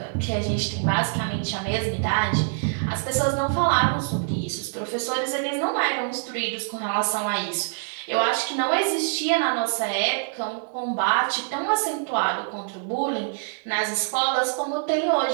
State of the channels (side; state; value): left; silent; 62 dB below the other